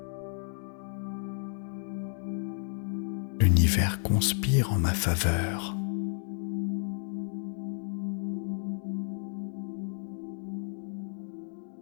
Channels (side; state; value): right; silent; 57 dB below the other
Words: L'univers conspire en ma faveur.